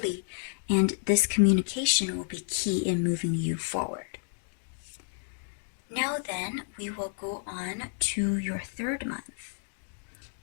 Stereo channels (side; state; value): right; silent; digital silence